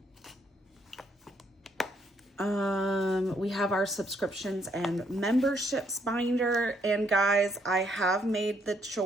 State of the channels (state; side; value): normal; both; correlation 0.72